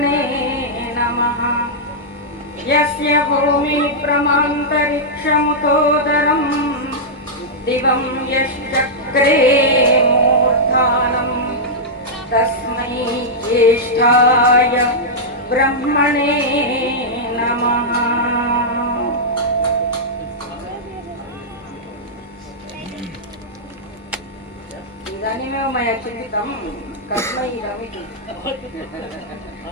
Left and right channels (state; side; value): normal; both; correlation -0.09